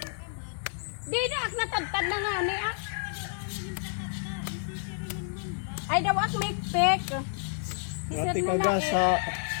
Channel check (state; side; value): silent; right; 58 dB below the other